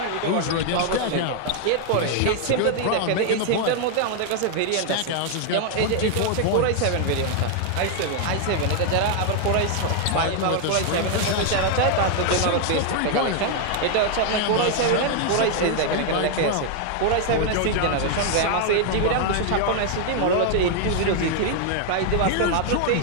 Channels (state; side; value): different; both; correlation 0.00